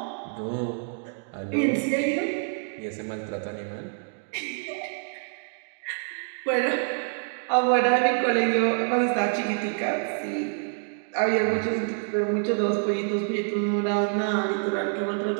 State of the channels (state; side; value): silent; left; 60 dB below the other